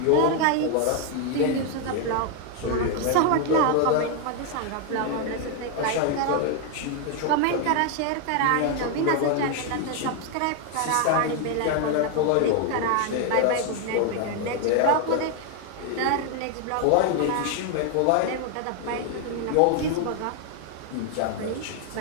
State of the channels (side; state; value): both; different; correlation 0.00